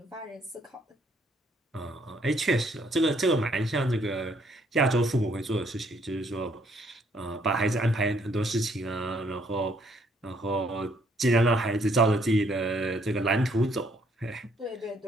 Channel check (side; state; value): both; normal; correlation 0.68